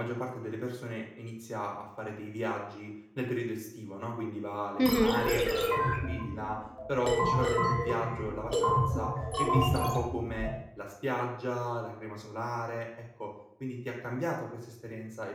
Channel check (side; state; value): both; identical; correlation 1.00